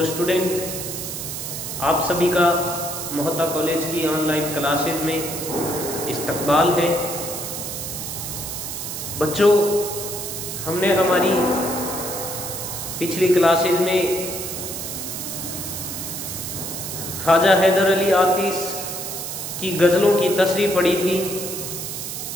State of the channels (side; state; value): right; noise; hiss, 6 dB below the sound